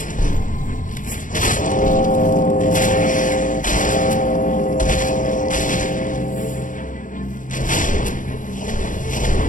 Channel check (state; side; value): late; right; 0.38 ms